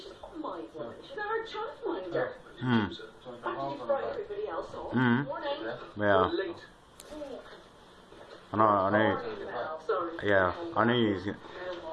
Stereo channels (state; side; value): identical; both; correlation 1.00